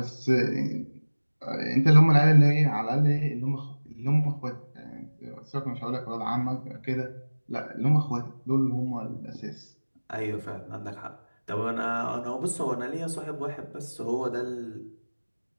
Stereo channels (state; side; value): inverted; both; correlation -1.00